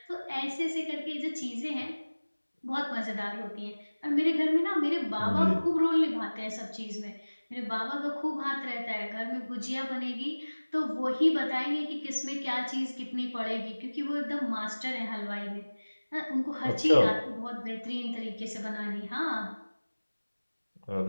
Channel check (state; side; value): inverted; both; correlation -1.00